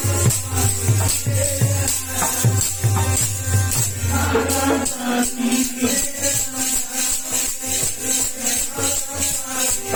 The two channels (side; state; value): both; identical; correlation 1.00